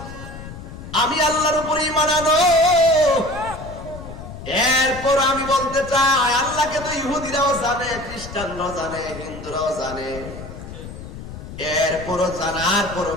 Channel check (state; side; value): noise; left; rumble, 12 dB below the sound